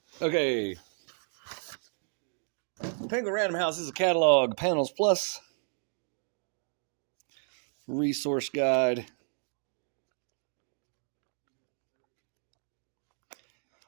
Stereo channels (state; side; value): silent; left; 56 dB below the other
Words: Okay. Penguin Random House is a catalog, panels plus, resource guide,